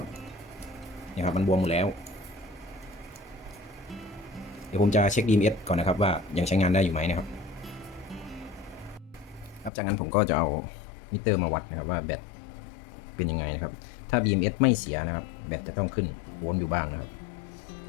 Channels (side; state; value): right; drops out; at 9.7 s